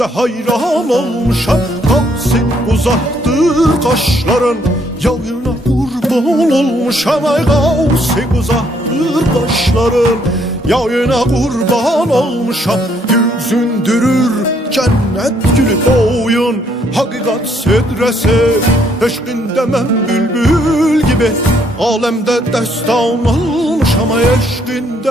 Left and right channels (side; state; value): both; normal; correlation 0.69